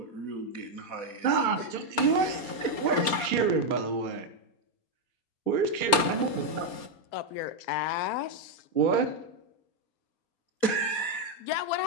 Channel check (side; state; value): right; late; 4.3 ms